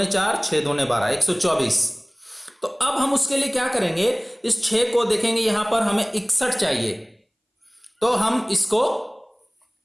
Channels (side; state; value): both; identical; correlation 1.00